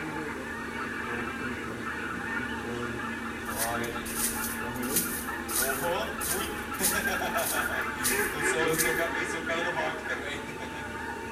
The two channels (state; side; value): identical; both; correlation 1.00